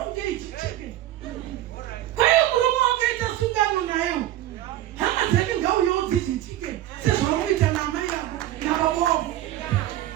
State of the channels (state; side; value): quieter; left; 13.8 dB